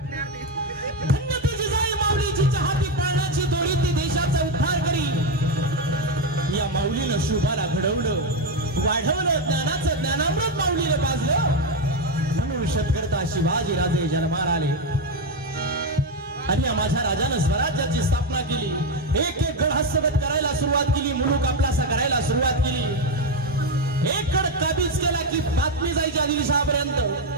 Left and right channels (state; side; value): normal; both; correlation 0.08